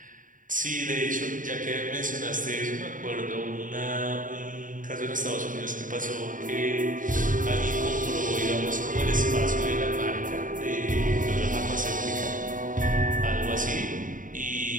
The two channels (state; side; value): late; left; 0.38 ms